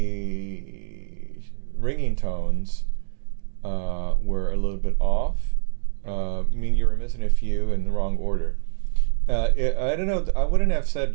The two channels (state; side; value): silent; left; digital silence